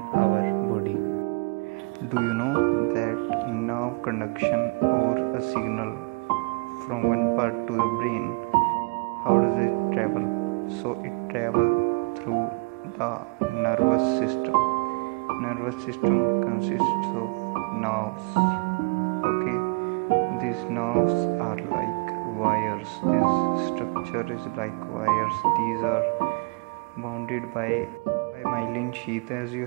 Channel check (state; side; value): quieter; left; 30.8 dB